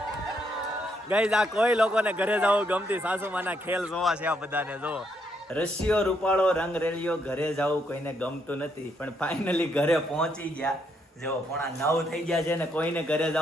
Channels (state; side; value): normal; both; correlation 0.75